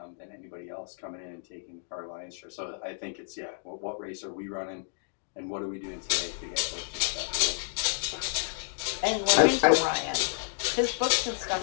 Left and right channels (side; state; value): right; silent; digital silence